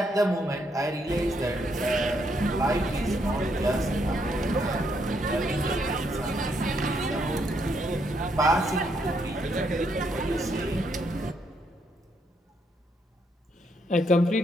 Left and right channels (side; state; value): both; normal; correlation 0.75